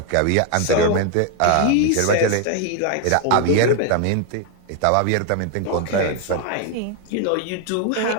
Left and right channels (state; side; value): different; both; correlation 0.01